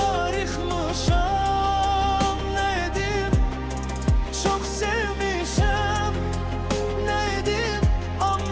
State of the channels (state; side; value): identical; both; correlation 1.00